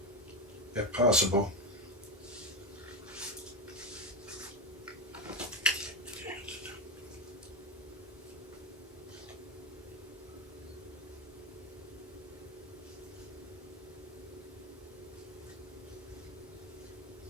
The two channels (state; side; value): normal; both; correlation 0.14